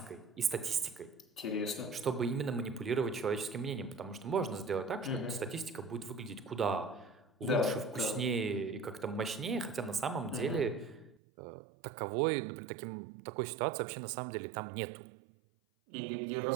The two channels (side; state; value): left; drops out; at 11.2 s